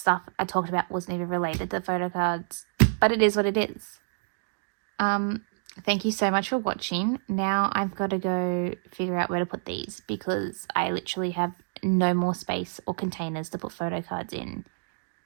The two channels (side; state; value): left; silent; digital silence